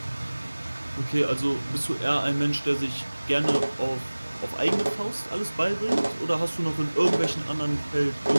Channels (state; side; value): inverted; both; correlation -1.00